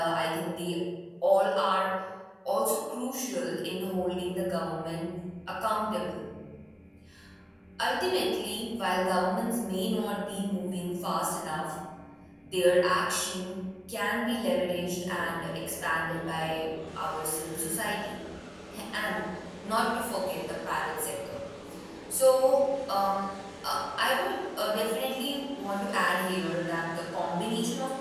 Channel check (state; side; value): identical; both; correlation 1.00